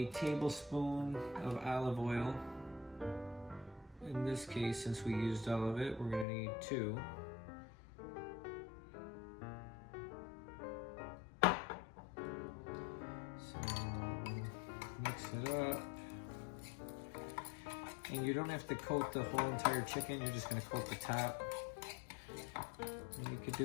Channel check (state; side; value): drops out; right; at 6.2 s